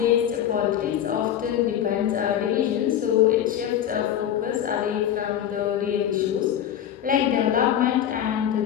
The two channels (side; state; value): right; quieter; 10.3 dB